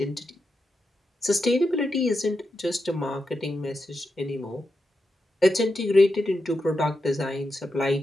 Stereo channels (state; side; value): normal; both; correlation 0.87